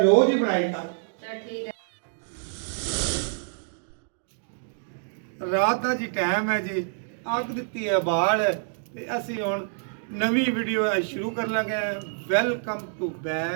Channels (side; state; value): left; silent; digital silence